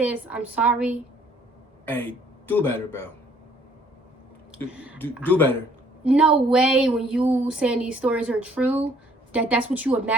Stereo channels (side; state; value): both; normal; correlation 0.61